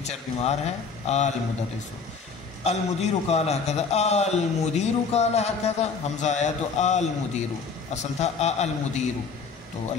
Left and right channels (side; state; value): right; quieter; 5.2 dB